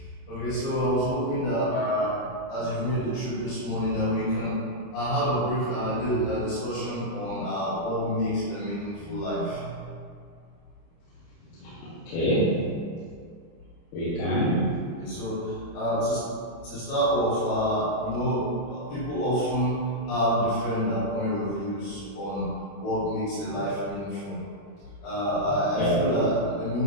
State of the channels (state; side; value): late; right; 30 ms